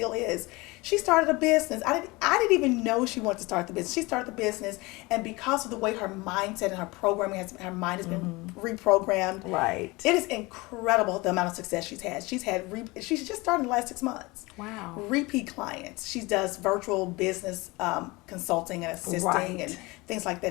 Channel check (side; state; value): right; quieter; 23.4 dB